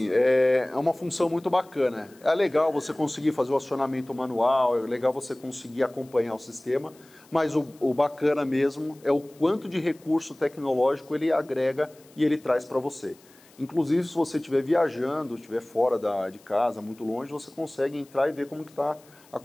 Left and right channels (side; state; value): left; noise; hiss, 28 dB below the sound